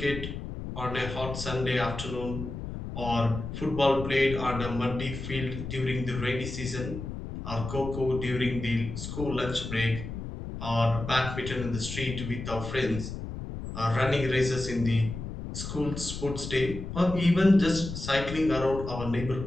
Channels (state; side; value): noise; left; rumble, 7 dB below the sound